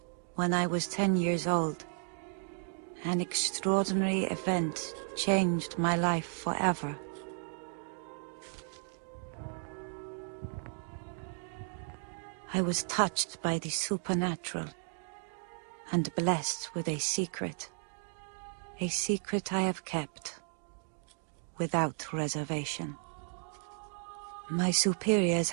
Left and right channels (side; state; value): left; silent; 55 dB below the other